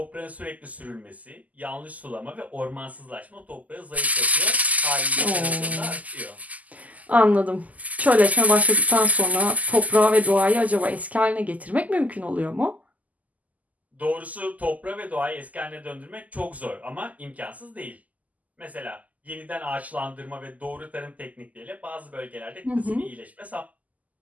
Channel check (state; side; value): late; left; 0.076 ms